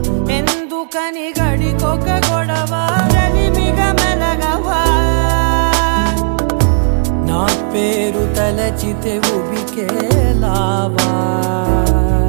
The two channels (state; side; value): silent; left; digital silence